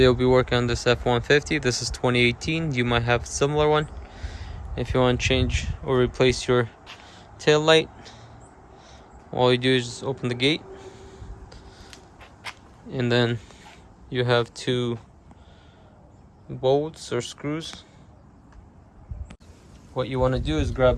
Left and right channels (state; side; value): identical; both; correlation 1.00